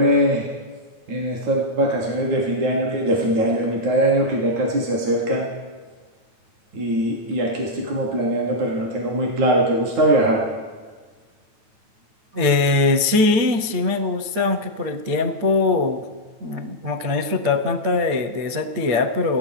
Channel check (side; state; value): left; late; 9.2 ms